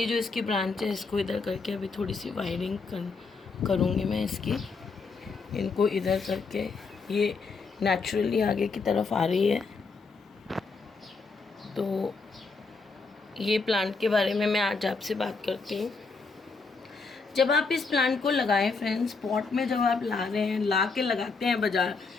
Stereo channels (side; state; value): right; quieter; 4.4 dB